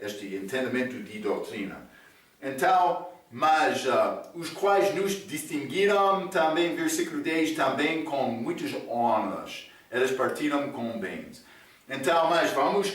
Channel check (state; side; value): identical; both; correlation 1.00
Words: entendimento de doutrina. Então, mas os quais nos distinguiram também, versículo 10, também com muitas honras. Eles partiram com bens. Então, mas vamos